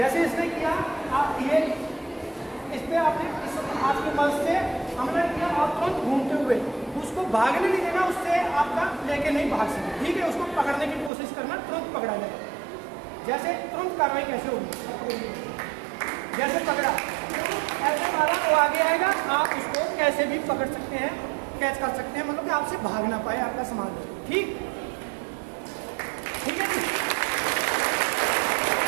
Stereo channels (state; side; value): drops out; left; at 11.1 s